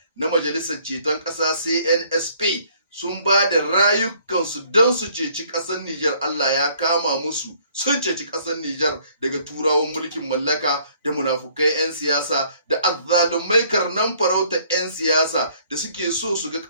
na Majalisar Ceton Ƙasa CNSP sun ba da rayukansu don su ceci ƙasar Nijar. Allah ya kama musu, sun ceci ƙasar Nijar daga turawan mulkin mallaka da munafukai 'yan siyasa da azzalumai karnan farauta 'yan siyasa da suke so su ga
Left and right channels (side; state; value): both; inverted; correlation -0.61